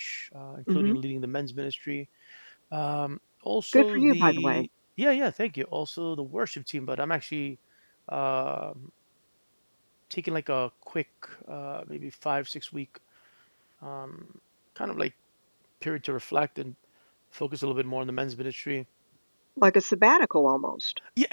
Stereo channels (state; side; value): inverted; both; correlation -1.00